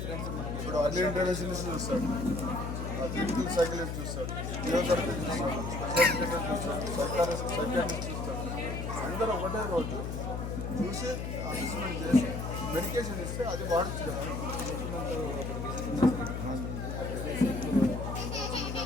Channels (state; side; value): noise; left; hum, 4 dB below the sound